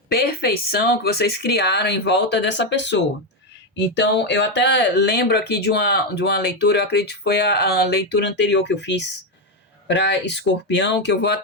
perfeição que vocês criaram em volta dessa pessoa. Então, eu até lembro aqui de uma leitura, eu acredito que foi a leitura anterior que eu fiz para Escorpião, que eu vou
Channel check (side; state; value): both; normal; correlation 0.07